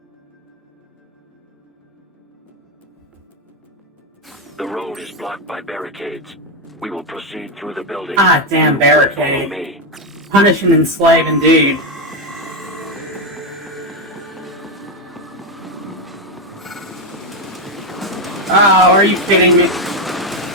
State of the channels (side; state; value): both; normal; correlation 0.08